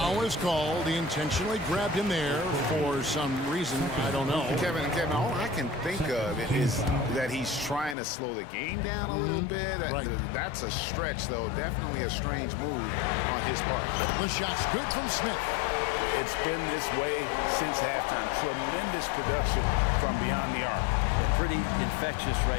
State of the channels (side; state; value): right; drops out; at 8.0 s